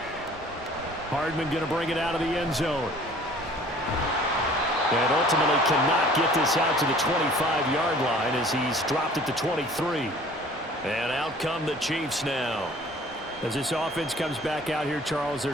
Hardman going to bring it out of the end zone. And ultimately cannot get this out to the 25-yard line as he's dropped at the 23. And out come the Chiefs now. As this offense comes back out here, Charles, they're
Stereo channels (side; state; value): both; normal; correlation 0.50